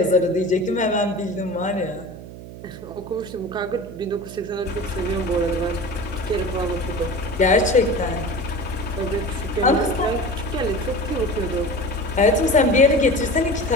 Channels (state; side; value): noise; right; hum, 14 dB below the sound